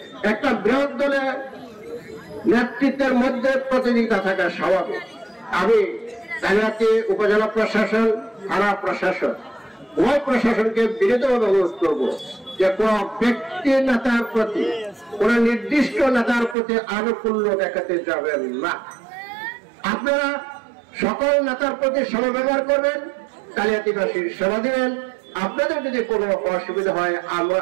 একটা বৃহৎ দলের নেতৃত্বের মধ্যে প্রতিযোগিতা থাকা স্বাভাবিক। আমি কালিহাতী উপজেলা প্রশাসন, থানা প্রশাসন, উভয় প্রশাসনকে বিনীতভাবে অনুরোধ করবো যে কোন ব্যক্তি নেতার প্রতি, কোন নির্দিষ্ট নেতার প্রতি আনুকূল্য দেখাতে যাবেন না। আপনারা সকল নেতার প্রতি সমব্যবহার করবেন, কালিহাতীবাসীর সেবা দিবেন। আপনাদের যদি কোনো অসুবিধা হয় আমরা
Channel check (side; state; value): left; drops out; at 16.6 s